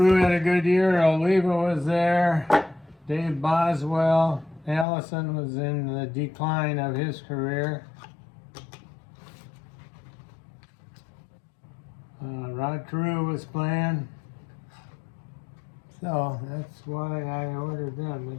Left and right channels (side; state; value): right; drops out; at 4.9 s